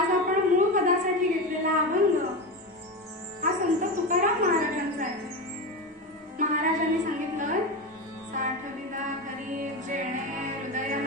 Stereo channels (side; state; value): both; normal; correlation 0.20